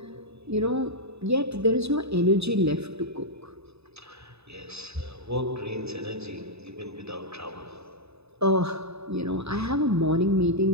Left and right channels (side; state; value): left; late; 0.79 ms